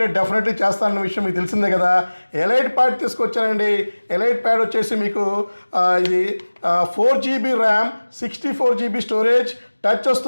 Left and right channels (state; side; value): inverted; both; correlation -1.00